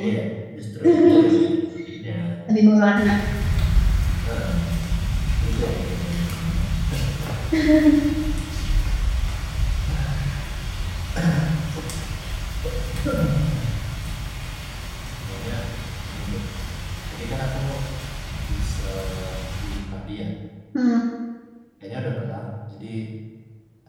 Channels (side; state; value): both; identical; correlation 1.00